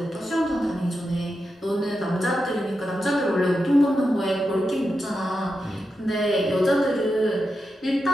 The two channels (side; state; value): both; normal; correlation 0.88